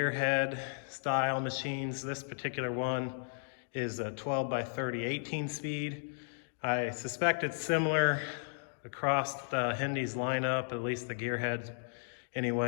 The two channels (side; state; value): right; silent; digital silence